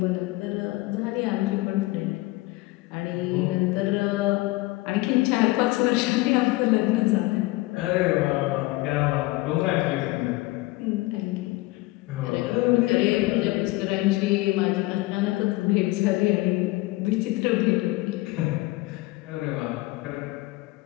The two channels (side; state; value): right; quieter; 21.0 dB